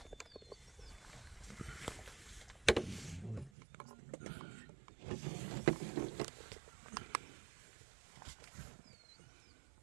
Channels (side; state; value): left; drops out; at 3.5 s